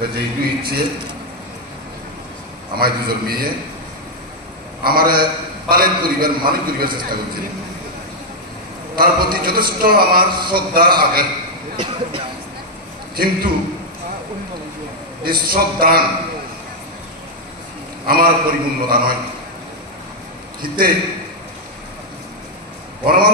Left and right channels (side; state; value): both; normal; correlation 0.00